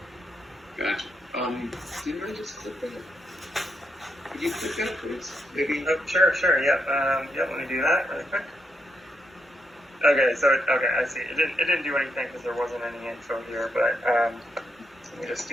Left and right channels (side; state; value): both; normal; correlation 0.79